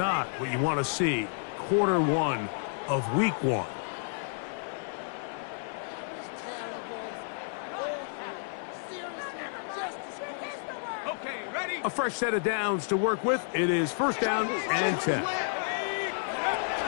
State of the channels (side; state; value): right; silent; digital silence